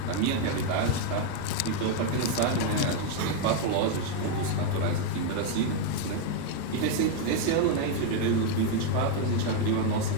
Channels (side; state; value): both; different; correlation 0.01